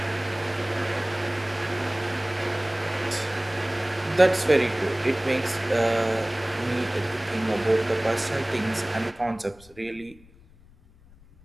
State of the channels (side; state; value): left; noise; rumble, 26 dB below the sound